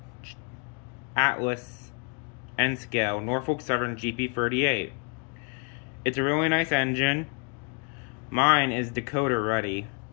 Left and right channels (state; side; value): quieter; right; 37.6 dB